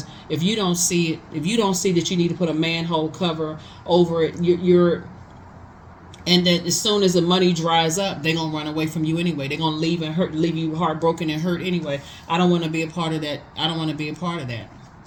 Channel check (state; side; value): identical; both; correlation 1.00